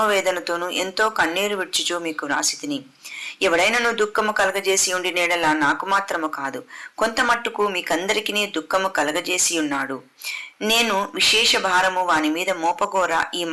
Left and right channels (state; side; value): identical; both; correlation 1.00